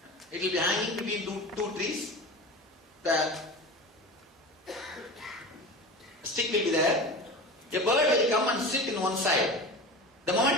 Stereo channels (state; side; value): normal; both; correlation 0.31